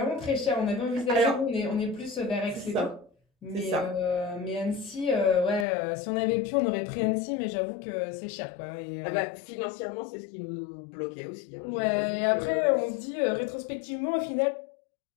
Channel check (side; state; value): right; drops out; at 5.7 s